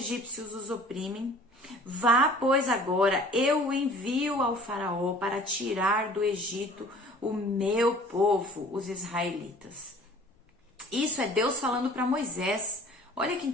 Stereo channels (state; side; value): normal; both; correlation 0.49